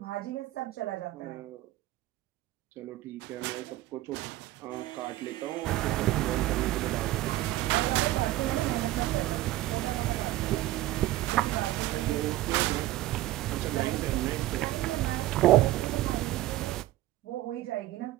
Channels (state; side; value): quieter; left; 16.0 dB